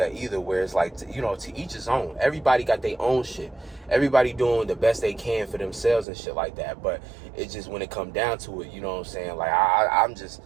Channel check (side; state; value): left; drops out; at 6.1 s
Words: either, where it's like, you know, to each his own. Everybody got their own shit. Everybody doing the best they can for themselves and shit like that. But it's just, when it come down to it, you know what I'm saying? Like,